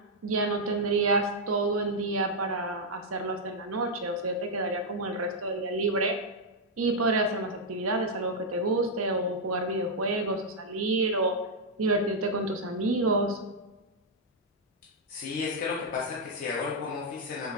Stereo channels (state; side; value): normal; both; correlation -0.04